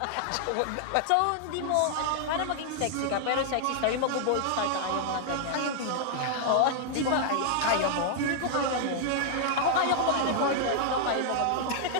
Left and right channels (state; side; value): different; both; correlation -0.01